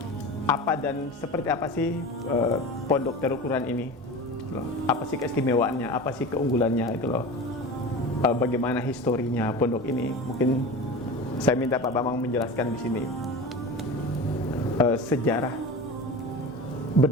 Apa dan seperti apa sih Pondok Darul Quran ini? Apa sih keistimewaannya? Apa sih keunggulannya itu loh? Bagaimana historinya pondok ini? Mungkin saya minta Pak Bambang menjelaskan di sini sejarah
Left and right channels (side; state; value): both; normal; correlation 0.31